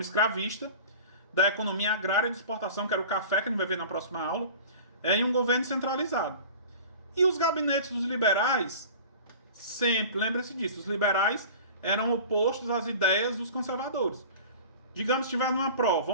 escravista, da economia agrária de exportação, que era o café, que a gente vai ver na próxima aula, em um governo centralizado. E os gabinetes dos liberais, sempre, lembre-se disso, os liberais eram opostos às ideias dos conservadores. Digamos que estiver numa prova,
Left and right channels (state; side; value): inverted; both; correlation -0.39